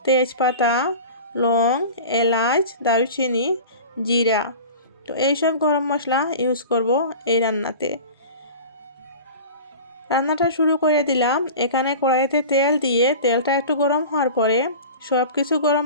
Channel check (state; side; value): inverted; both; correlation -0.36